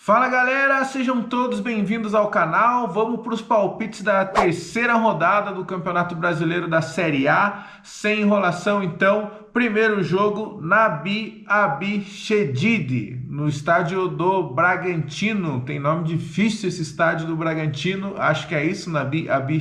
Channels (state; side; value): identical; both; correlation 1.00